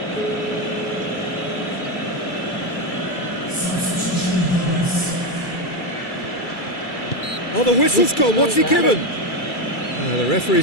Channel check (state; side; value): late; right; 2.3 ms